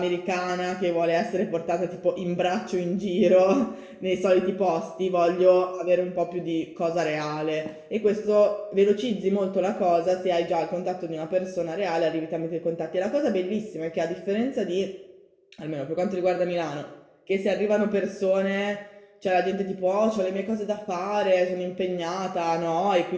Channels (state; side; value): identical; both; correlation 1.00